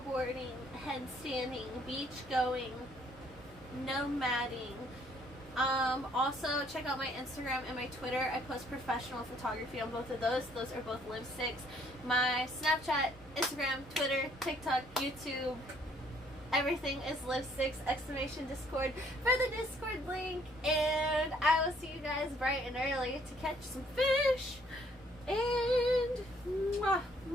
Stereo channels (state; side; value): normal; both; correlation 0.64